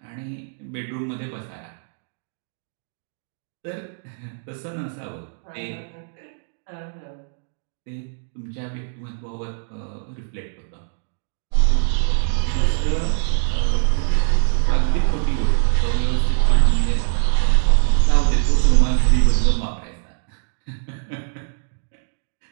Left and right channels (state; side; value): silent; left; digital silence